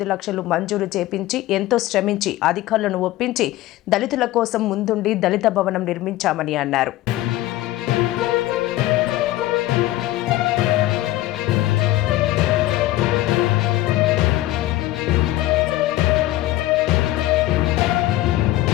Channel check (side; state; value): right; quieter; 15.9 dB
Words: లక్షలు మంజూరు చేపించి ఎంతో శ్రమించి అధికారులను ఒప్పించి దళితుల కోసం ముందుండి దళిత భవనం నిర్మించామని అన్నారు.